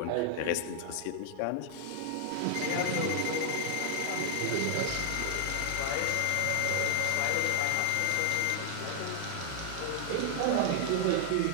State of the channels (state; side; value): different; both; correlation -0.01